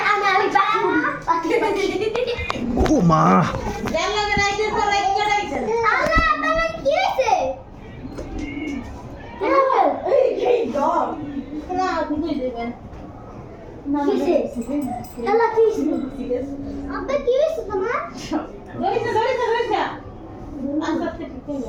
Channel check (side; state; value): both; identical; correlation 1.00